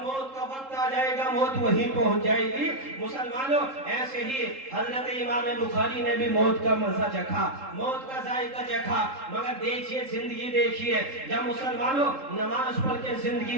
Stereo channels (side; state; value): left; late; 3.7 ms